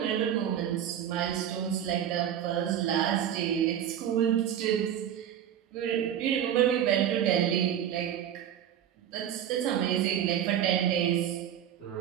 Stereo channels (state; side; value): quieter; left; 10.1 dB